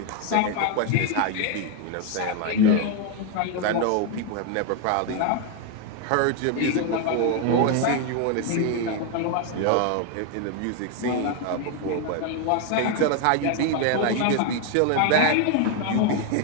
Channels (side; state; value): both; different; correlation 0.01